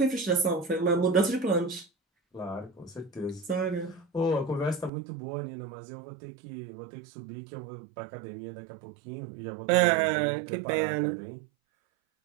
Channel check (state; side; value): drops out; left; at 4.9 s